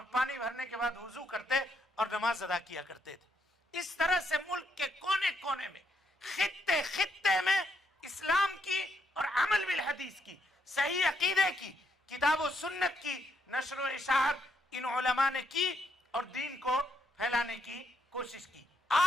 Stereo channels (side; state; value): both; normal; correlation 0.76